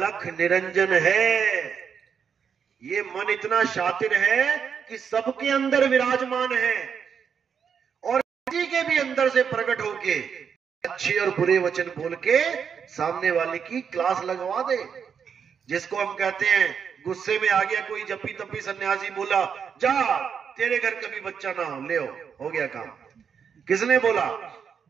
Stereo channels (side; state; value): left; quieter; 7.0 dB